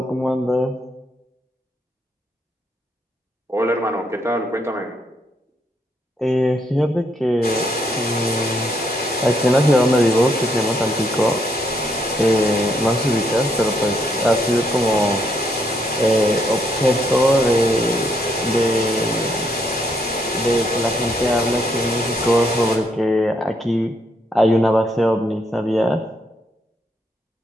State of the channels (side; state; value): both; normal; correlation 0.73